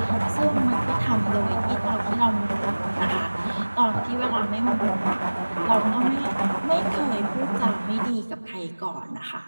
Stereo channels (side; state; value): both; inverted; correlation -1.00